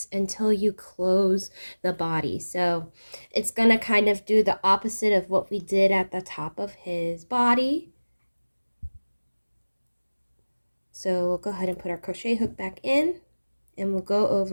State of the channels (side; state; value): both; inverted; correlation -1.00